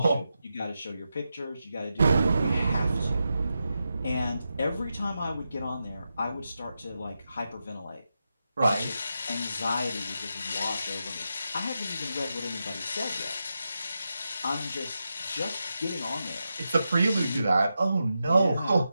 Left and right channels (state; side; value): inverted; both; correlation -0.88